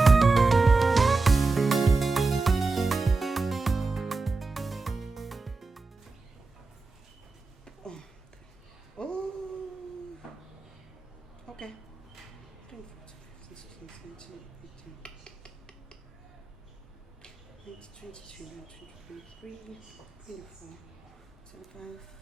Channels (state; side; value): quieter; left; 3.8 dB